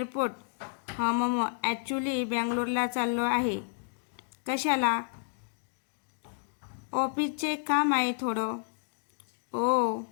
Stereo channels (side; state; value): right; silent; digital silence